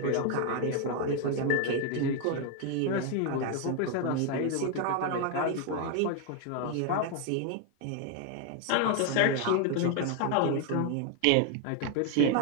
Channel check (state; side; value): different; both; correlation 0.01